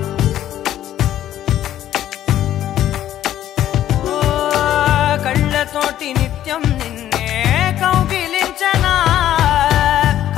ఓ కళ్ళతోటి నిత్యం నిన్నే కౌగిలించనా,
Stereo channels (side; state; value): right; quieter; 12.1 dB